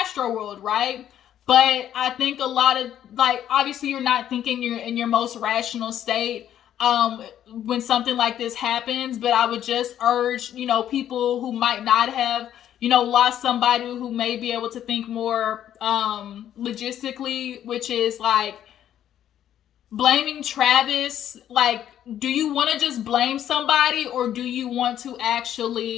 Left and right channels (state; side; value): quieter; right; 10.8 dB